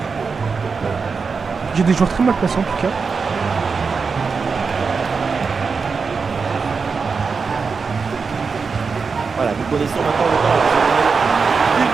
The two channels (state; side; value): quieter; left; 5.1 dB